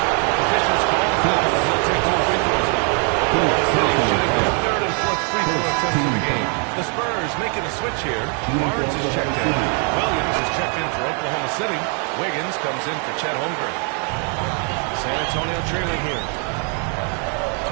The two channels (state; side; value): quieter; left; 39.2 dB